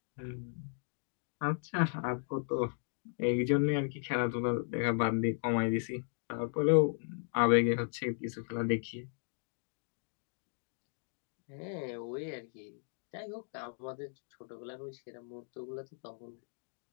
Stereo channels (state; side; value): silent; right; 54 dB below the other